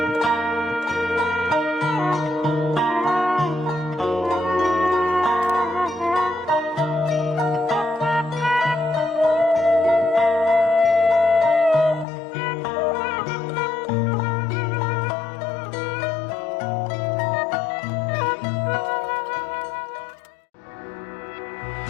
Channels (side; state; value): right; drops out; at 12.1 s